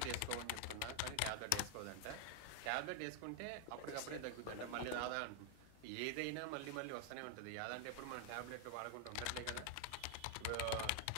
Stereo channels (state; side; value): different; both; correlation 0.00